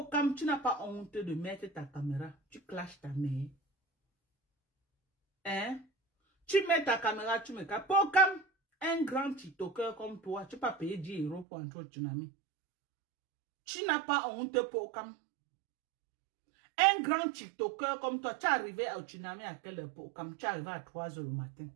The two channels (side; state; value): left; drops out; at 11.5 s